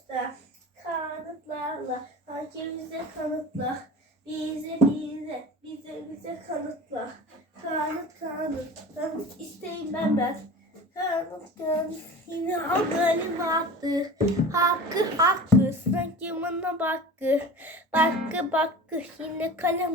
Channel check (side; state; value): both; normal; correlation 0.36